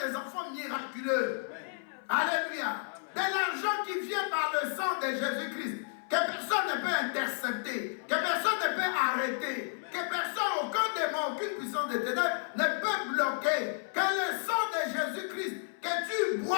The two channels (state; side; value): silent; right; 57 dB below the other